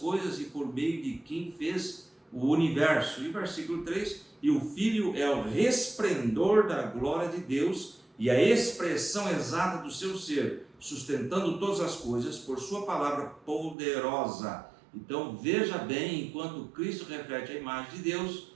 e por meio de quem fez o universo. E versículo 3, e o Filho é o resplendor da glória de Deus e a expressão exata do seu ser, sustentando todas as coisas por sua palavra poderosa. Então veja bem, enquanto Cristo reflete a imagem de Deus,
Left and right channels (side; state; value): left; drops out; at 13.8 s